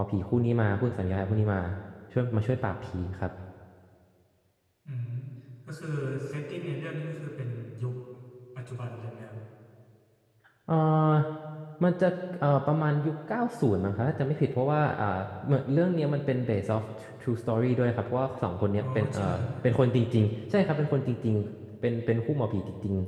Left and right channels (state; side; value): identical; both; correlation 1.00